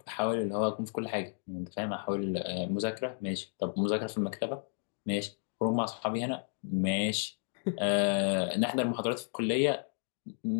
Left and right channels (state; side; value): silent; right; 56 dB below the other